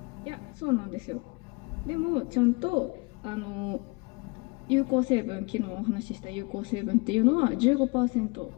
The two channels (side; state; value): right; quieter; 28.8 dB